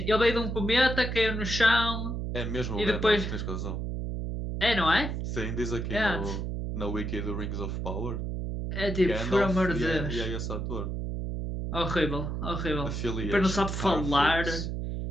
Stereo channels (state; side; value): noise; right; hum, 3 dB below the sound